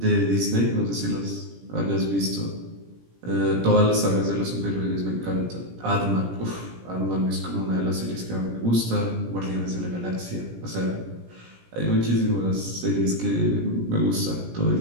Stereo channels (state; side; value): late; left; 17 ms